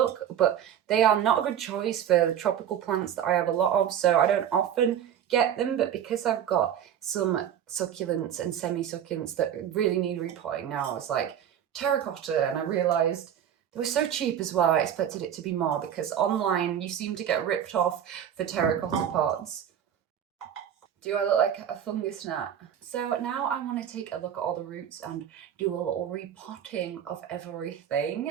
but they are not a good choice for the tropical plants that I have a lot of, so I don't often get them. But because I've got some succulents and semi-succulents that really need repotting now, I was like, terracotta, and I realised they were so cheap as well. I expected it to be more, because online you seem to get ripped off for terracotta pots. Do I look like a fungus gnat? So now I want to take a look at all the roots and do a little repotting of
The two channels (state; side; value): quieter; left; 9.6 dB